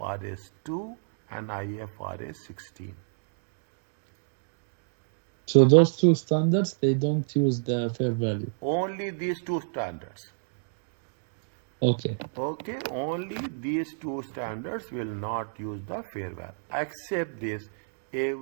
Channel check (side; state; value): left; silent; digital silence